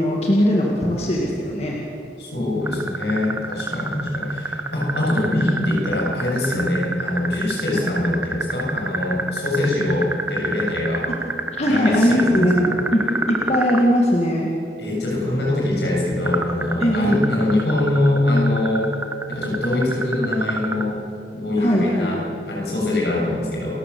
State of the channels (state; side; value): normal; both; correlation 0.74